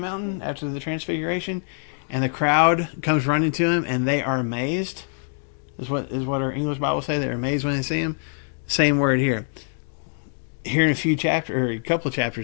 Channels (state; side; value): silent; right; digital silence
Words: after the transfiguration, and the crowd comes running to him, and they are amazed. Is what our English Bible say. They're amazed when they see him. Same word here. Here in a couple of